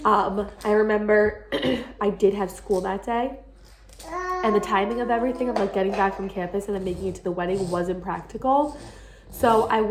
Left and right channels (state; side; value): identical; both; correlation 1.00